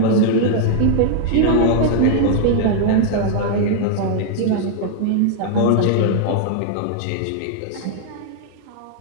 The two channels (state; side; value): different; both; correlation -0.01